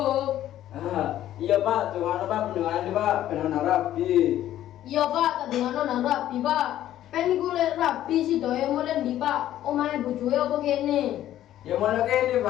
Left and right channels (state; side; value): quieter; right; 12.6 dB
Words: Iya Pak, cuma Pak pendengaran nih Pak, pengen rapi. Iya pak, tadi ngono nang rapi pak. Pen kulit rapi si doya mulai di pak, omahnya bojoe apa kene? Ya mana kene